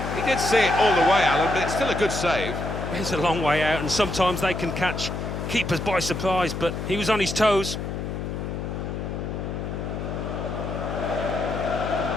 He did see it all the way, Alan, but it's still a good save. It's a long way out, and sometimes they can catch keepers by surprise, but he was on his toes.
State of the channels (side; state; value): left; noise; hum, 5 dB below the sound